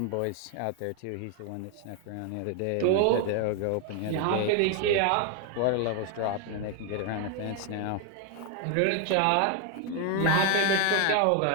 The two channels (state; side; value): different; both; correlation 0.01